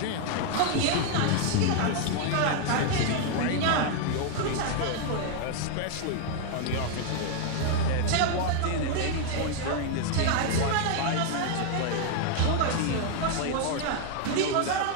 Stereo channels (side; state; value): both; different; correlation 0.00